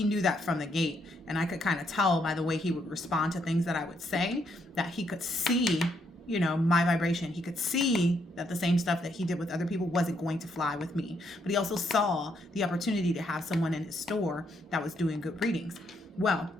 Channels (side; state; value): both; normal; correlation 0.74